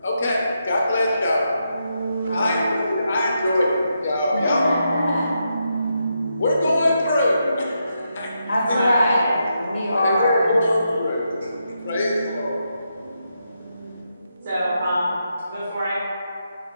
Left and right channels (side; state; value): both; inverted; correlation -0.83